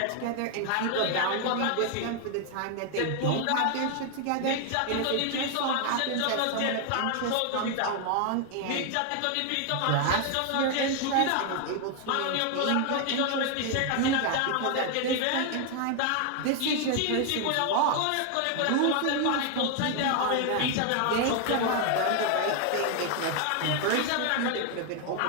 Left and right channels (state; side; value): different; both; correlation 0.01